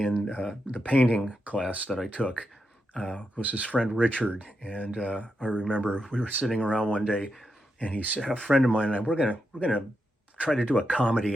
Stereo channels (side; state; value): both; normal; correlation 0.85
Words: the painting class that I took was his friend Richard. And I remember we were sitting around one day, and he said, a friend of mine and I, we're gonna try to do a